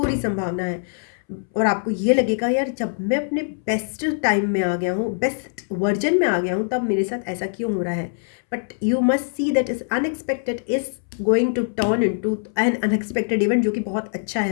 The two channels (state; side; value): silent; right; 64 dB below the other